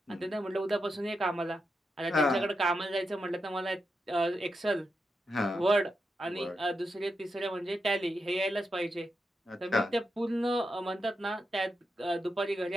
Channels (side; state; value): both; normal; correlation 0.86